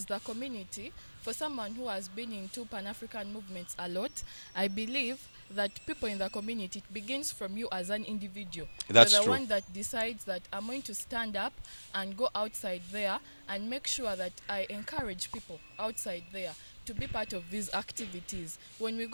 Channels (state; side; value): inverted; both; correlation -1.00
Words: the community, for someone who has been into Pan-African movements a lot, I believe that people in the community, it begins from you as an individual. That's You're the true. one that decides that I'm going to stand up and go outside there and make sure that I encourage people outside there to be part of these activities. When we